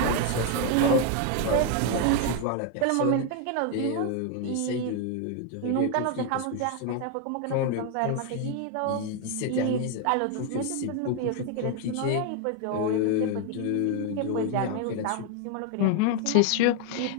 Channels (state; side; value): different; both; correlation 0.01